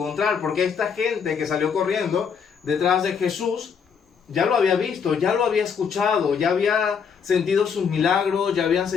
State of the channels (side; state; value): right; quieter; 6.5 dB